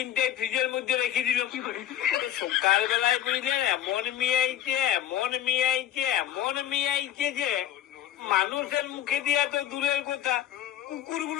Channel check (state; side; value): quieter; right; 11.7 dB